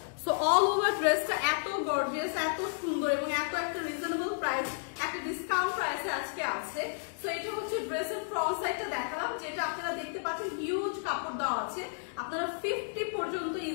সো অল ওভার ড্রেসটা এত গর্জিয়াস, এত সুন্দর এবং এত একটা রিজনেবল প্রাইস, একটা ডিসকাউন্ট প্রাইসে আজকে আছে। সো এটা হচ্ছে ড্রেসের ফ্রন্ট সাইডটা দেখালাম, যেটা আপনারা দেখতে পাচ্ছেন হিউজ কাপড় দেওয়া আছে, আপনারা 50 পর্যন্ত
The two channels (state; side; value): silent; right; digital silence